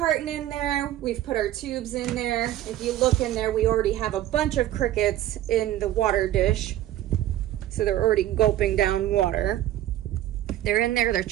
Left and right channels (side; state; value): left; quieter; 13.4 dB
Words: in there. We've put our tubes in there. If you look in there, we already have a bunch of crickets in the water dish. So they're already gulping down water. They're in there, they're